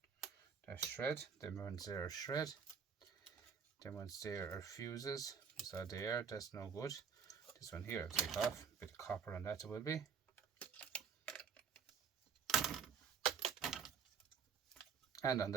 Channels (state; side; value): quieter; left; 6.5 dB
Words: Shred. Them ones there are shred. Them ones there are fuses. So there, that's no good. This one here I'll take off. A bit of copper on that it will be. And on